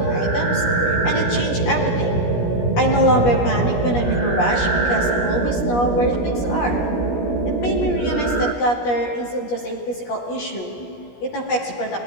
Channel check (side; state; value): right; late; 17 ms